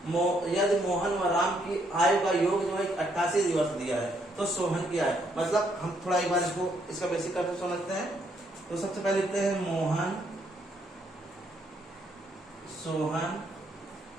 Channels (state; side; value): normal; both; correlation 0.72